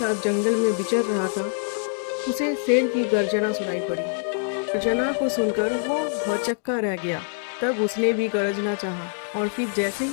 जंगल में विचर रहा था, उसे शेर की गर्जना सुनाई पड़ी। गर्जना को सुनकर वो भौचक्का रह गया। तब उसने भी गरजना चाहा और फिर जैसे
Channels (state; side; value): silent; right; digital silence